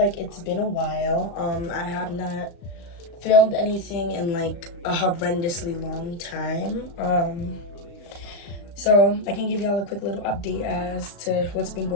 it's been a while. I have not filmed anything in like a horrendously long time. So I can give y'all a quick little update as to what's been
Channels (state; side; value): late; right; 36 ms